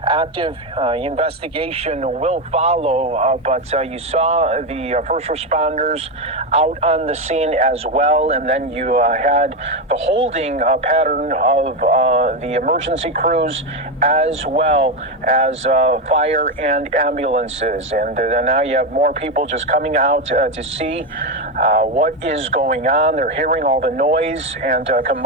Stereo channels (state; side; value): normal; both; correlation 0.10